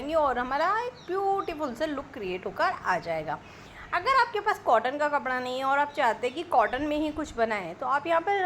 और हमारा एक ब्यूटीफुल सा लुक क्रिएट होकर आ जाएगा। अगर आपके पास कॉटन का कपड़ा नहीं है और आप चाहते हैं कि कॉटन में ही कुछ बनाएं तो आप यहाँ पर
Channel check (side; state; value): both; identical; correlation 1.00